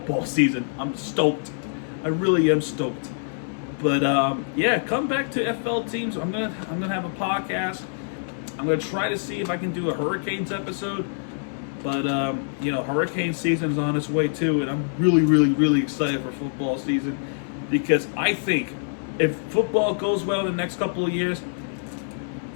season. I'm stoked. I really am stoked. But yeah, come back to FL teams. I'm gonna have a podcast. I'm gonna try to see if I can do a Hurricanes episode. But you know, hurricane season's on its way too, and I'm really, really, really excited for football season because I think if football goes well in the next couple of years,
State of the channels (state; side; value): silent; right; 60 dB below the other